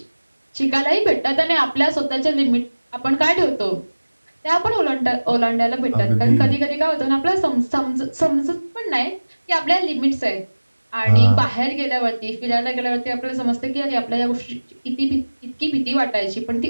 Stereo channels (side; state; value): both; inverted; correlation -1.00